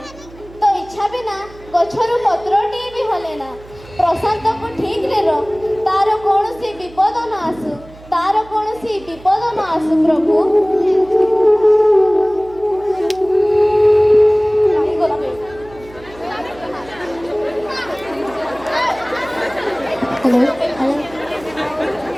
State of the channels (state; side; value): noise; right; hum, 21 dB below the sound